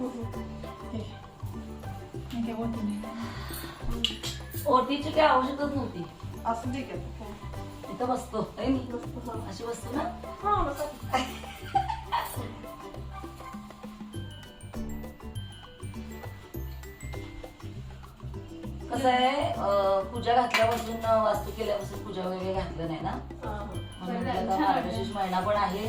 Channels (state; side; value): identical; both; correlation 1.00